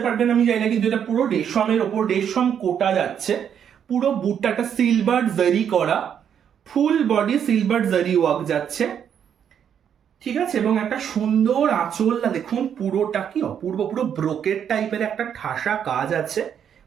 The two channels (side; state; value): left; quieter; 8.5 dB